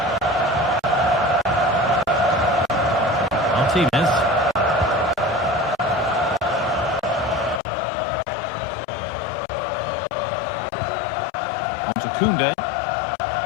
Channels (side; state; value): right; drops out; at 7.6 s